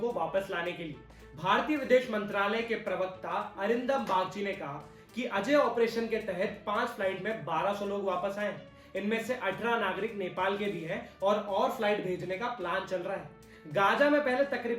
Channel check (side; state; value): both; identical; correlation 1.00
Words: वापस लाने के लिए भारतीय विदेश मंत्रालय के प्रवक्ता अरिंदम बागची ने कहा कि अजय ऑपरेशन के तहत 5 फ्लाइट में 1200 लोग वापस आए। इनमें से 18 नागरिक नेपाल के भी हैं और फ्लाइट भेजने का प्लान चल रहा है। गाजा में पहले